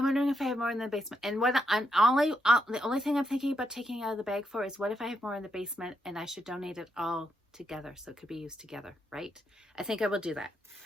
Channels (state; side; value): normal; both; correlation 0.81